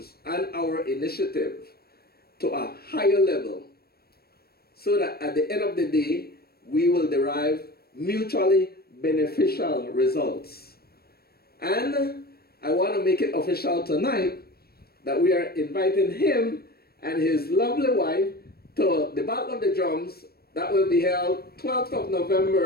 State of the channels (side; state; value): right; late; 0.45 ms